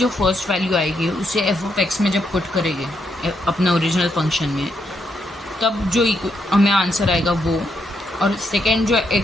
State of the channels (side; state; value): both; normal; correlation 0.78